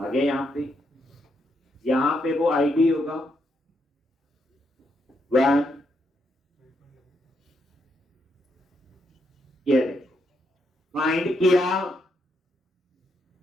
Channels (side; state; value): both; normal; correlation 0.79